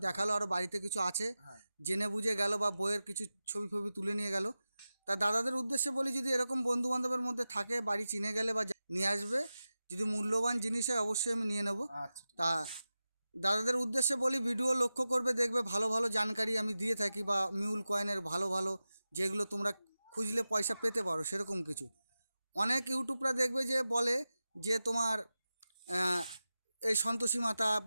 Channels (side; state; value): both; inverted; correlation -0.94